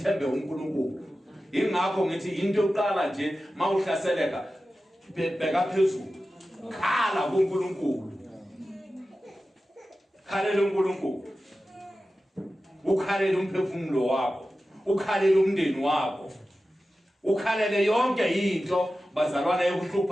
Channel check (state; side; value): normal; both; correlation 0.94